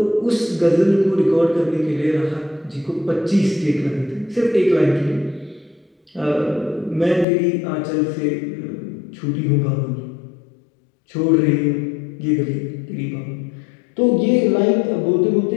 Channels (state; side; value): drops out; right; at 7.2 s